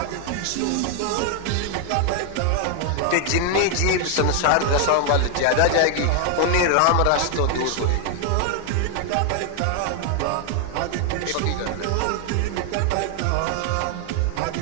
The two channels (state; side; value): different; both; correlation 0.00